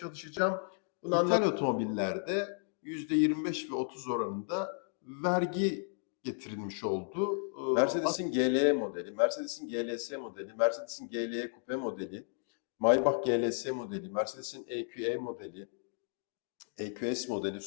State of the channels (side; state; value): right; silent; 55 dB below the other